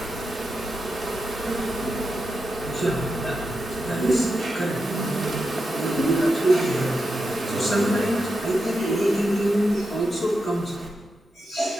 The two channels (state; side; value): normal; both; correlation 0.88